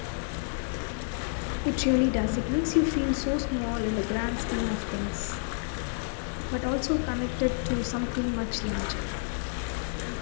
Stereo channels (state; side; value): silent; right; digital silence